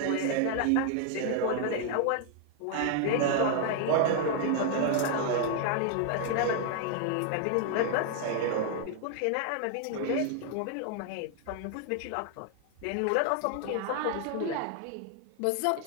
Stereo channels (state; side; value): different; both; correlation 0.00